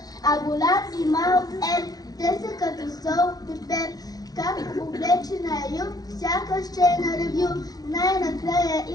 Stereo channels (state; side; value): late; right; 0.19 ms